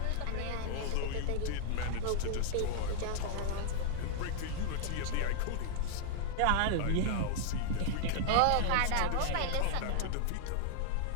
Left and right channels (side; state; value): both; different; correlation -0.01